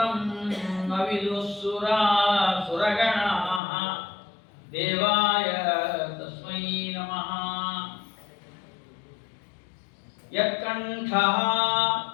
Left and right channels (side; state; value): right; drops out; at 3.6 s